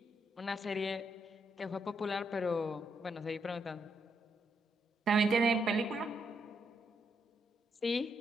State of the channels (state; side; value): normal; both; correlation 0.78